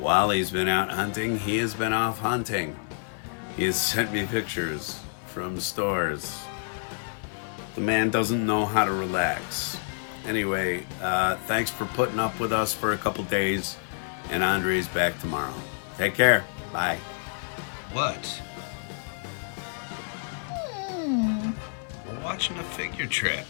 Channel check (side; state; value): right; silent; digital silence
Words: he's been out hunting, he has been off hunting. He has sent me pictures from stores. The man doesn't know how to relax. Anyway, thanks for putting up with us for a couple days, and Andre's back tomorrow. Take care. Bye. What? We're watching a figure trap.